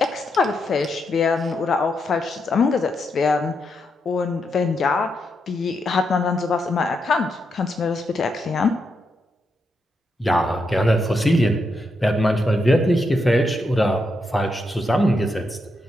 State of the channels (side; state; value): both; normal; correlation 0.82